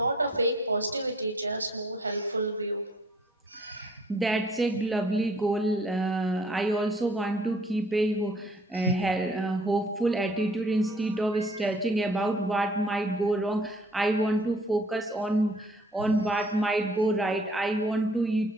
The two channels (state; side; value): normal; both; correlation 0.57